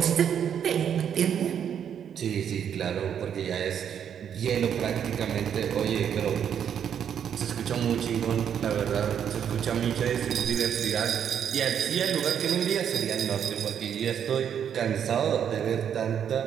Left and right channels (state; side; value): quieter; left; 8.6 dB